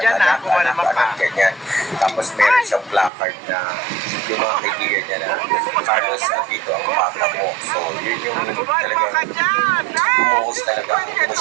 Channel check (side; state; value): left; drops out; at 3.1 s